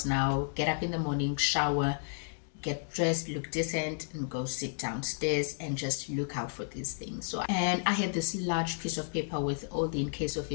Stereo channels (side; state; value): right; silent; digital silence